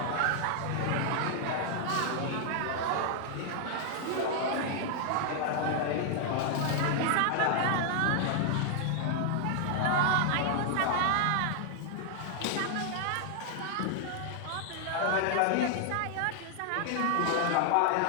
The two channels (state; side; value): different; both; correlation 0.00